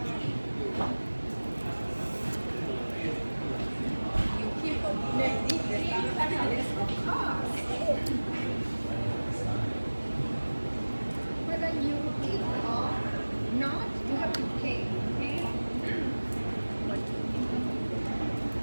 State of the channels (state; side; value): inverted; both; correlation -1.00